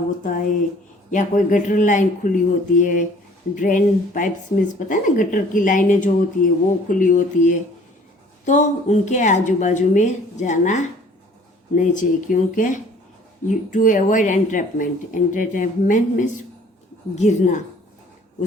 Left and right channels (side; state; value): both; normal; correlation 0.54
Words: है या कोई गटर लाइन खुली होती है, ड्रेन पाइप्स मीन्स पता है ना, गटर की लाइनें जो होती है वो खुली होती है, तो उनके आजू बाजू में जाना नहीं चाहिए, क्योंकि to avoid entrapment. Entrapment means गिरना,